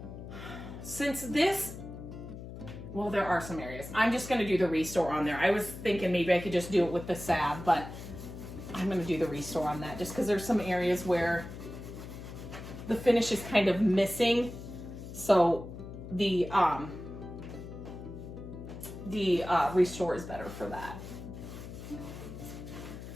Since this, well, there are some areas. I'm just gonna do the restore on there. I was thinking maybe I could just do it with the salve, but I'm gonna do the restore on that just because there's some areas where the finish is kind of missing. So the restore is better for that.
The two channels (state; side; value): noise; left; hum, 11 dB below the sound